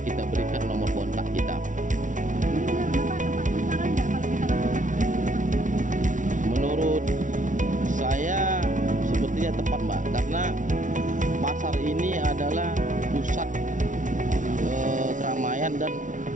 kita berikan nomor kontak kita. Ini menurut Bapak tepat sasaran nggak kalau kita lakukan ini? Menurut saya sepertinya tepat Mbak, karena pasar ini adalah pusat keramaian dan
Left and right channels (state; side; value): late; left; 0.37 ms